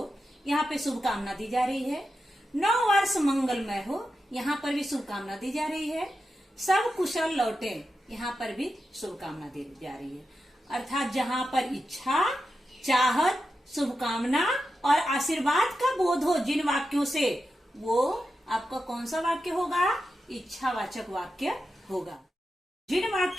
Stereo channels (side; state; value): both; normal; correlation 0.89